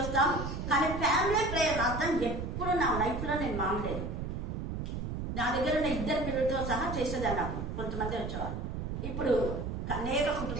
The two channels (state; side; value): noise; right; rumble, 4 dB below the sound